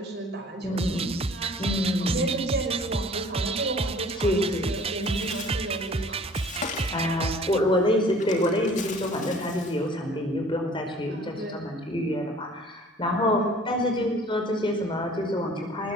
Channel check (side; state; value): both; normal; correlation 0.51